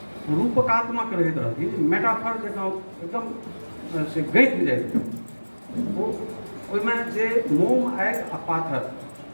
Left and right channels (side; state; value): both; inverted; correlation -1.00